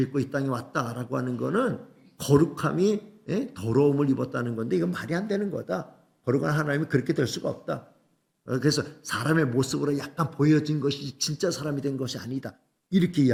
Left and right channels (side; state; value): both; identical; correlation 1.00